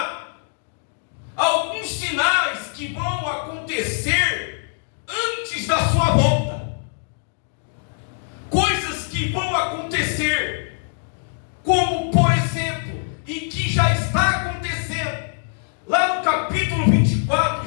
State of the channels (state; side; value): silent; right; digital silence